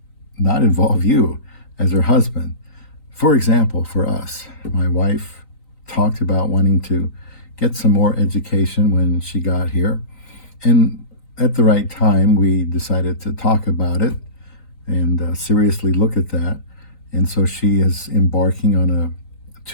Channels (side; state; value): right; late; 3.9 ms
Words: not involve you as her husband. For example, for us, my wife talked about wanting to get some more education when she got here. And at the right time, we decided to talk about it and seriously look at that. And so she is embarking on a